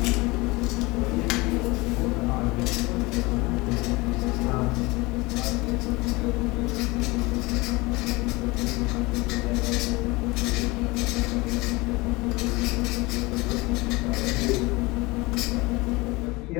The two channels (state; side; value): quieter; right; 23.3 dB